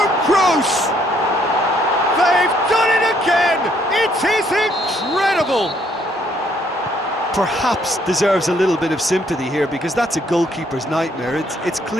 Kroos! They've done it again! It is incredible! Perhaps deserves a little bit of sympathy here, because that's a goalkeeper's nightmare. It's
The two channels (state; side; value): normal; both; correlation 0.68